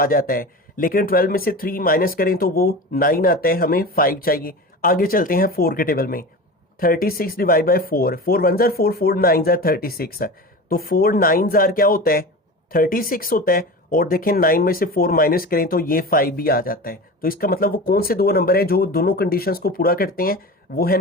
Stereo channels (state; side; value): normal; both; correlation 0.30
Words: जाता है, लेकिन 12 में से 3 माइनस करें तो वो 9 आता है, हमें 5 चाहिए। आगे चलते हैं 4 के टेबल में, 36 डिवाइड बाई 4, 4 1 4 4 9 36, तो 4 9 क्या होता है 36 होता है। और देखें 9 में से 4 माइनस करें तो ये 5 भी आ जाता है। तो इसका मतलब वो कौन से दो नंबर है जो दोनों कंडीशंस को पूरा करते हैं, वो है